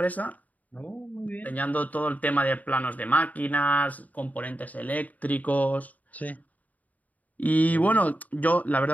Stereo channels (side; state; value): right; late; 0.075 ms